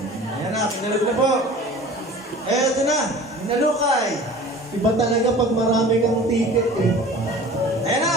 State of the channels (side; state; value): both; normal; correlation 0.42